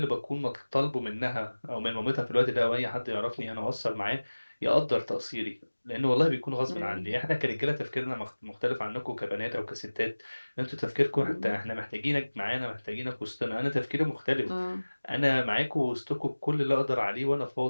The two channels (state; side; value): inverted; both; correlation -1.00